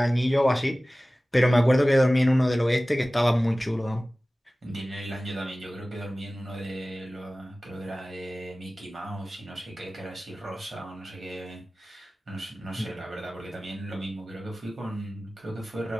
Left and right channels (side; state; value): both; normal; correlation 0.97